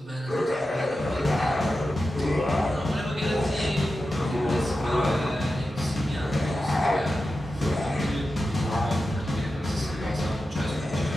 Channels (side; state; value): both; normal; correlation 0.92